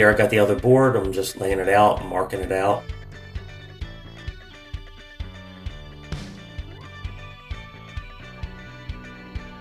I got the other board, I'm just laying it out, marking it out.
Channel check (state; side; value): identical; both; correlation 1.00